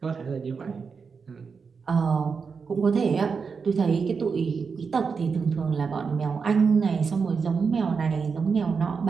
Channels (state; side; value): quieter; left; 5.5 dB